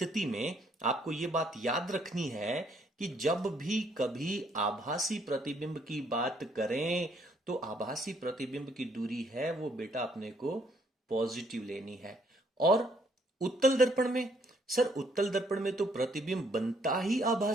में आपको ये बात याद रखनी है कि जब भी कभी आभासी प्रतिबिंब की बात करें तो आभासी प्रतिबिंब की दूरी है वो बेटा अपने को पॉजिटिव लेनी है। और उत्तल दर्पण में, सर उत्तल दर्पण में तो प्रतिबिंब बनता ही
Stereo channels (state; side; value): normal; both; correlation 0.68